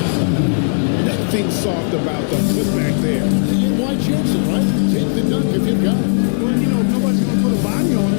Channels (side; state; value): right; silent; digital silence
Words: That thing's soft about the putback there. And why chance it, right? Take the dunk if you've got it. Well, you know, if nobody's going to put a body on